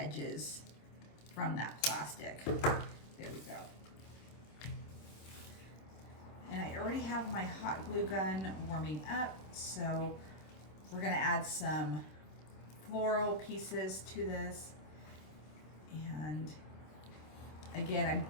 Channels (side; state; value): right; late; 26 ms